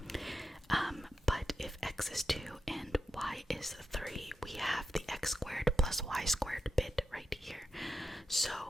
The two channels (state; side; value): normal; both; correlation 0.88